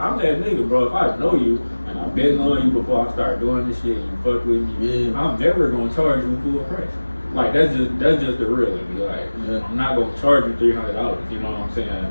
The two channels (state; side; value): inverted; both; correlation -1.00